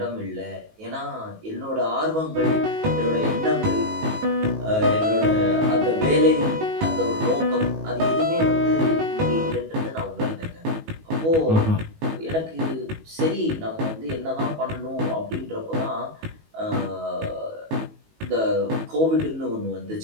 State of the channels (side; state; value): left; late; 19 ms